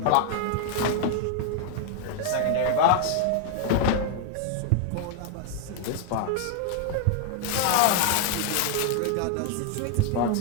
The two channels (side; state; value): both; different; correlation 0.00